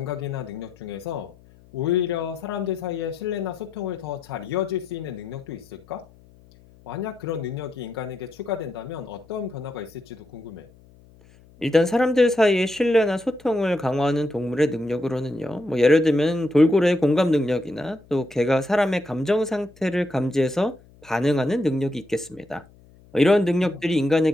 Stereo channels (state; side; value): noise; left; hum, 26 dB below the sound